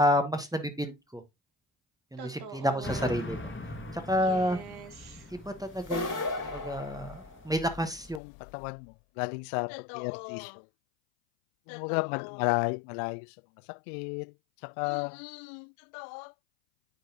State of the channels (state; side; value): drops out; right; at 8.2 s